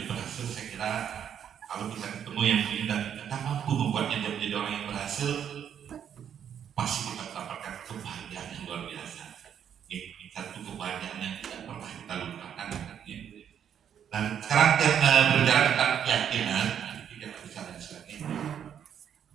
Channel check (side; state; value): left; quieter; 8.9 dB